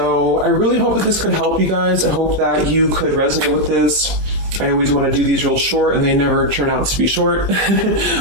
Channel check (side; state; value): left; late; 20 ms